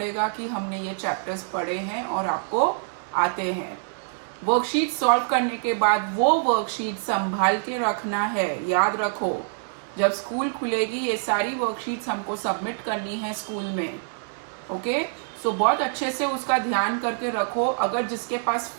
कि हमने ये चैप्टर्स पढ़े हैं और आपको आते हैं. वर्कशीट सॉल्व करने के बाद वो वर्कशीट संभाल के रखना है. याद रखो, जब स्कूल खुलेगी ये सारी वर्कशीट्स हमको सबमिट करनी है स्कूल में. ओके, सो बहुत अच्छे से उसका ध्यान करके रखो. अगर जिसके पास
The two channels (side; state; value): left; silent; 61 dB below the other